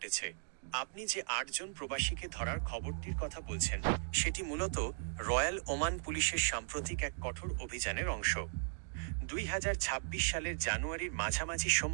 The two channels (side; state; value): left; silent; digital silence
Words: আপনি যে ৮ জন প্রবাসীকে ধরার খবরটির কথা বলছেন, সেটি মূলত রয়্যাল ওমান পুলিশের সাম্প্রতিক এক কঠোর অভিযানের অংশ। ২০২৬ সালের জানুয়ারির মাঝামাঝি